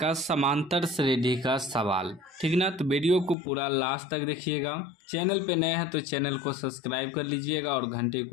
का समांतर श्रेणी का सवाल। ठीक ना, तो वीडियो को पूरा लास्ट तक देखिएगा। चैनल पे नए हैं तो चैनल को सब्सक्राइब कर लीजिएगा और घंटे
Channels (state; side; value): drops out; right; at 3.4 s